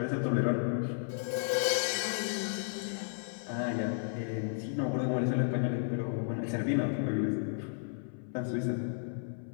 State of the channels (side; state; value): right; silent; 56 dB below the other